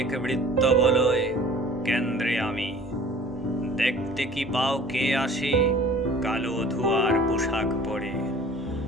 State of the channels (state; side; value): normal; both; correlation 0.47